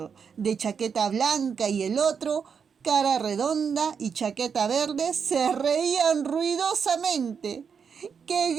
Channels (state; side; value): quieter; left; 6.5 dB